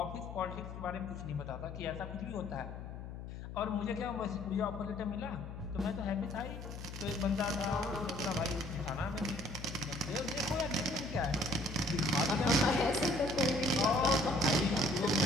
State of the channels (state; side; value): noise; left; hum, 9 dB below the sound